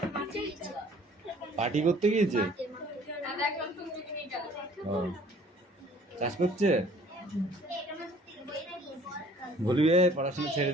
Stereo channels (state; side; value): normal; both; correlation 0.54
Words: পার্টি করতে গিয়েছে, চাষ করছে। বলবি পড়াশোনা ছেড়ে